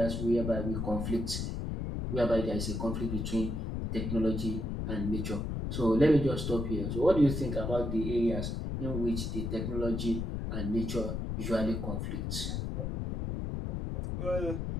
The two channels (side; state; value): left; noise; rumble, 2 dB below the sound